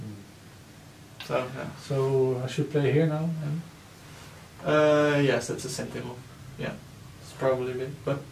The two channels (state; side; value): identical; both; correlation 1.00